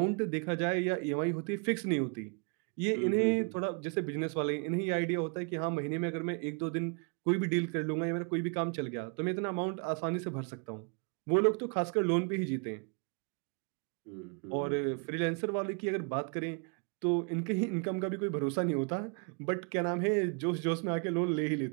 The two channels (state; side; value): quieter; left; 38.1 dB